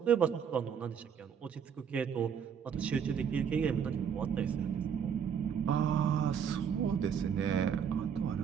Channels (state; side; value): quieter; left; 7.6 dB